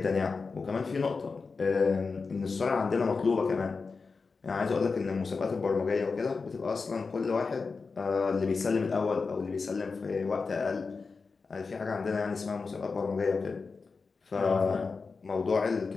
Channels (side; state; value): right; quieter; 4.6 dB